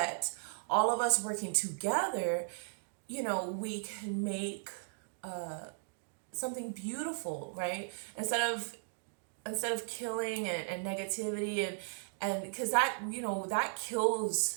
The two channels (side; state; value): left; silent; digital silence